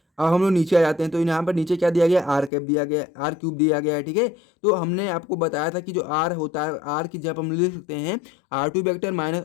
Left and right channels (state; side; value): drops out; right; at 2.5 s